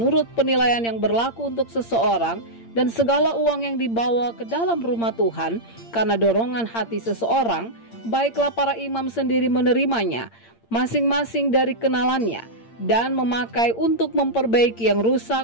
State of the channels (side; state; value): right; late; 8.7 ms